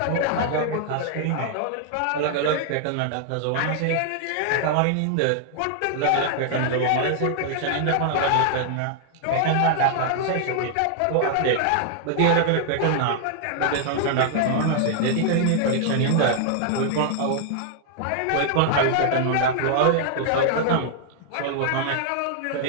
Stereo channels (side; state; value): both; different; correlation 0.00